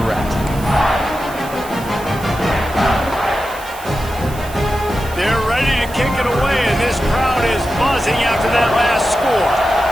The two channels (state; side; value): noise; right; hiss, 17 dB below the sound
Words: rest. They're ready to kick it away, and this crowd is buzzing after that last score.